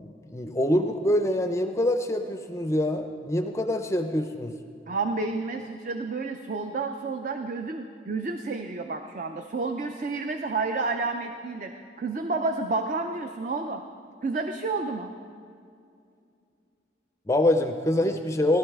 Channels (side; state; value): both; normal; correlation 0.50